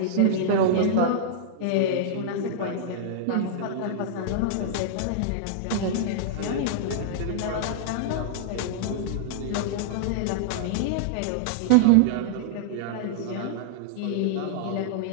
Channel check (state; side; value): different; both; correlation -0.02